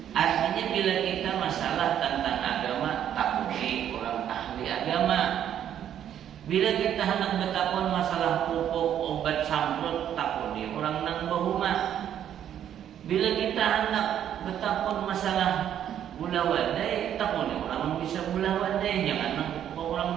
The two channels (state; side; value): quieter; left; 10.1 dB